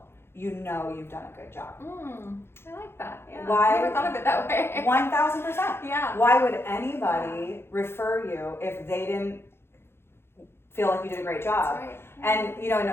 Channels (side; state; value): right; late; 0.12 ms